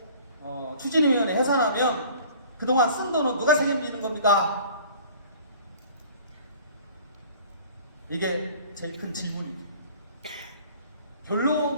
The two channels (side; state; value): both; inverted; correlation -0.49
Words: 추진위원회 해산하면 그동안 쓴 돈은 누가 책임지는 겁니까? 이게 제일 큰 질문입니다.